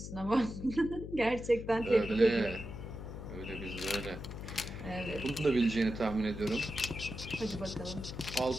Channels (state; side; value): noise; left; hum, 9 dB below the sound